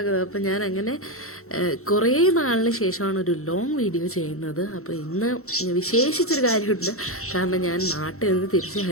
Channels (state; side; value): late; right; 0.63 ms